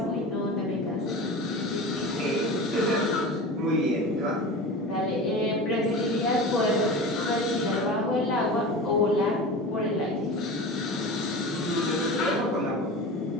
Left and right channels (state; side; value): normal; both; correlation 0.31